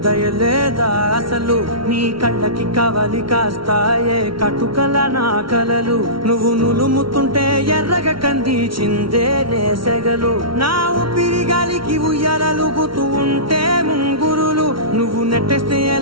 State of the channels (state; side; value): late; left; 0.74 ms